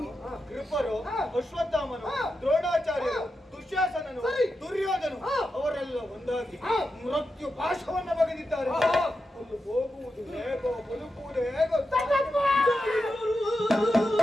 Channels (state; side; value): normal; both; correlation 0.89